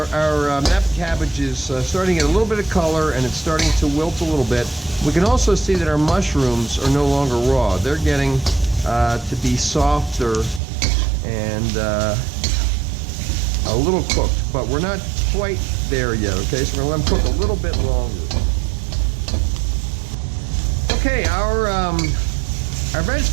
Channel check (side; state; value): left; drops out; at 10.6 s